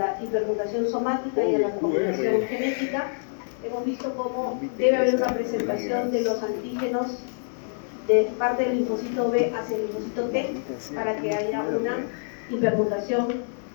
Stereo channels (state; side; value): silent; right; digital silence